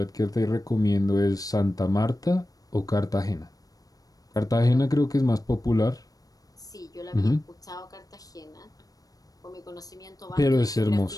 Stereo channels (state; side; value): late; right; 0.18 ms